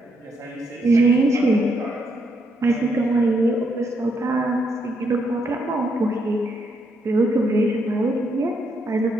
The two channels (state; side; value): normal; both; correlation 0.77